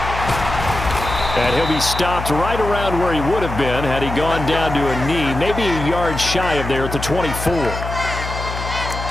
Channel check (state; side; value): noise; left; hum, 7 dB below the sound